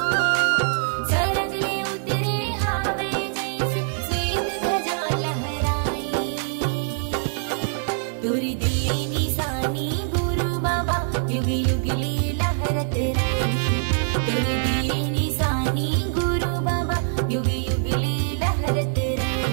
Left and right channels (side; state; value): left; silent; digital silence